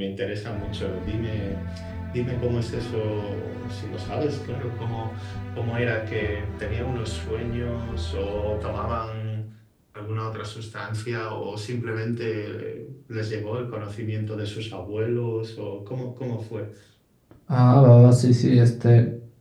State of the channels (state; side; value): identical; both; correlation 1.00